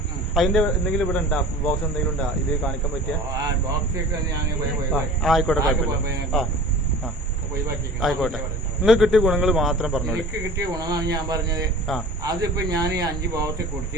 അതിന്റെ എന്തെങ്കിലും ഇവിടെ ഉണ്ടാ ബോക്സ് എന്തെങ്കിലും ഉണ്ടാ ഇത് കാണിക്കാൻ പറ്റിയ? ആയിക്കോട്ടെ, ആയിക്കോട്ടെ. നിങ്ങൾക്ക് കിട്ടിയ ഗുണങ്ങൾ മാത്രം പറഞ്ഞു. എനിക്ക് കിട്ടിയ ഗുണമാണ് ഞാൻ പറഞ്ഞത്. അതിപ്പോ ഞാൻ ഈ 5 ബോക്സ്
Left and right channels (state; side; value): normal; both; correlation 0.40